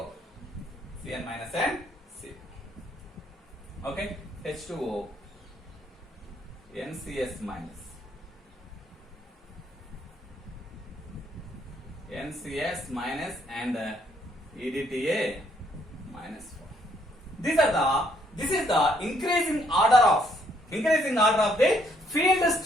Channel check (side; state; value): both; normal; correlation 0.69